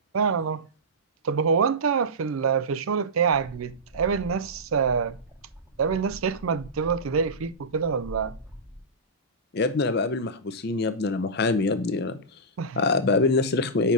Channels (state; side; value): normal; both; correlation -0.16